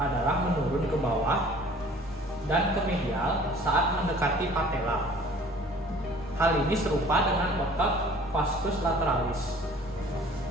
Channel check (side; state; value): both; normal; correlation 0.51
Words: menurun ke bawah dan ke medial saat mendekati patella. Hal ini serupa dengan otot vastus lateralis.